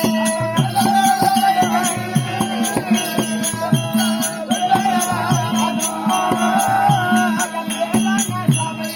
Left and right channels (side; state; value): both; identical; correlation 1.00